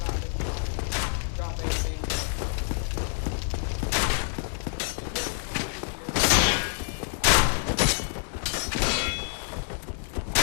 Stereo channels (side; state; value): right; silent; digital silence